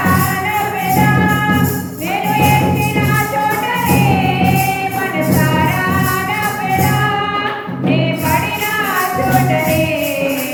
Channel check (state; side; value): identical; both; correlation 1.00